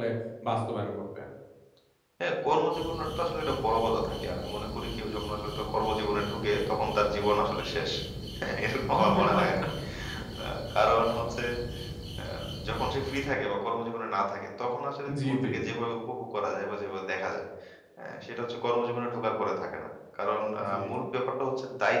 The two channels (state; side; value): identical; both; correlation 1.00